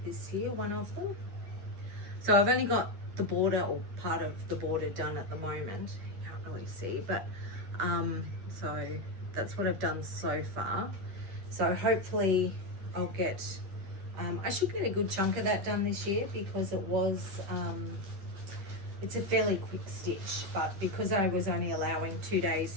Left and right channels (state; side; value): late; left; 10 ms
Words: this year, one of them. So I've only got the border, or part of the border, done at the moment. You can't really see, but so that's what I've done so far. So hopefully I'll get, I should get a good chunk of that done this year, because it was, it's a fairly quick stitch, but because I was only allowing 2 days